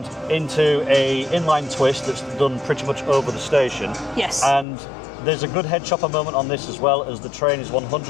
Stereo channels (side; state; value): right; drops out; at 4.7 s